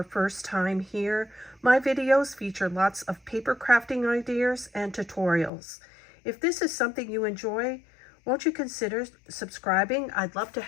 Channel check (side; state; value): right; drops out; at 5.5 s